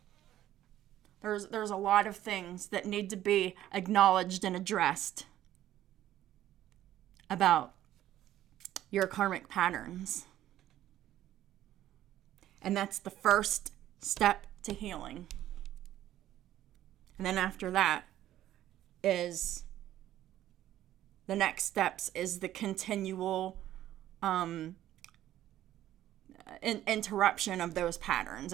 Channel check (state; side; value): quieter; left; 13.0 dB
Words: There's a lot of things that need to be acknowledged and addressed about your karmic patterns. And that's the first step to healing. And then after that is the next steps is the continual interruption of those patterns